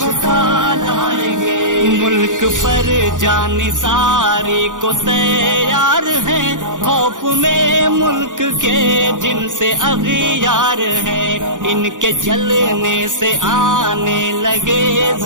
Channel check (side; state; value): left; late; 0.87 ms